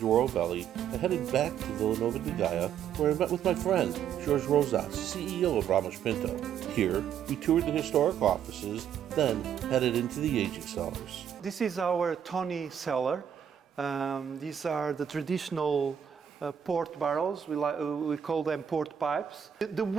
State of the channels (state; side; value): quieter; left; 8.9 dB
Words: Valley, I headed back to Vila de Gaia, where I met with my friend, Jorge Rosas, CEO of Ramos Pinto. Here, we toured the historic offices, then headed into the aging cellars. This is our Tony cellar. These are the traditional port barrels. We call them port pipes. The